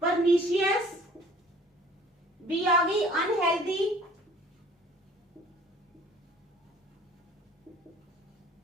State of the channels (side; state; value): both; normal; correlation 0.51